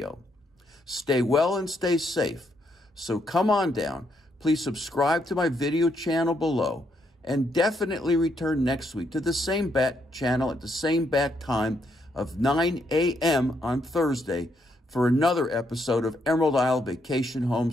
Stay well and stay safe. So come on down. Please subscribe to my video channel below, and definitely return next week to the same bat channel at the same bat time of 9 a.m. on Thursday for another episode of Emerald Isle Vacation Home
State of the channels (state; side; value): normal; both; correlation 0.76